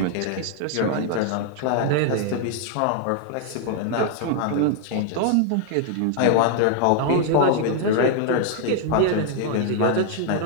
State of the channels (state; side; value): different; both; correlation 0.00